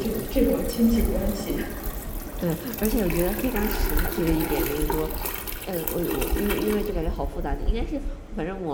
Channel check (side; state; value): both; identical; correlation 1.00